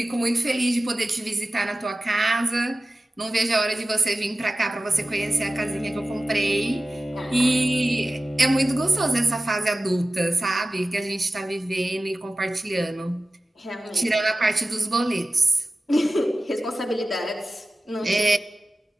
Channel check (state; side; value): normal; both; correlation 0.96